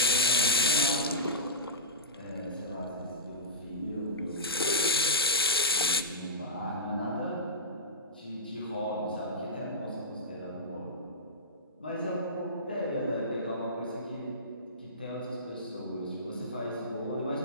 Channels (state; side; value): normal; both; correlation -0.19